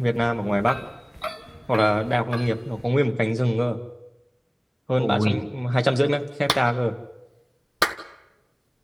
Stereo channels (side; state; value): both; identical; correlation 1.00